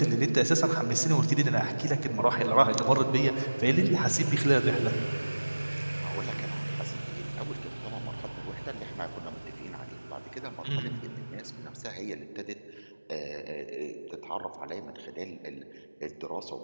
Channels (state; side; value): inverted; both; correlation -1.00